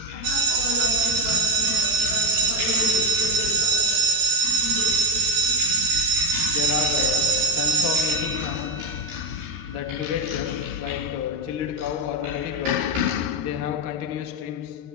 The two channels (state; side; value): late; left; 13 ms